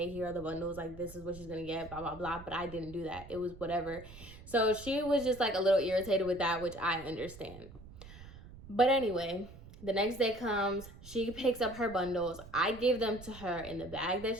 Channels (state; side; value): noise; right; rumble, 17 dB below the sound